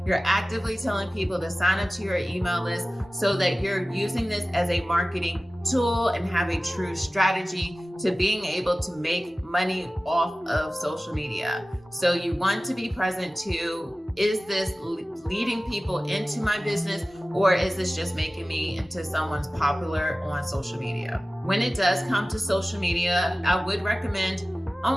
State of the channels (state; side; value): normal; both; correlation 0.96